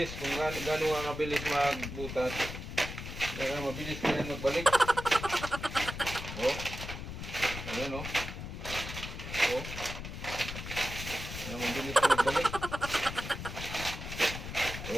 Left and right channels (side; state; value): left; noise; rumble, 8 dB below the sound